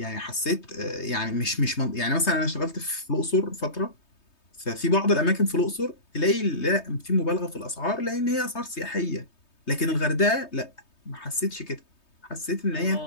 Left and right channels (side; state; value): right; late; 3.2 ms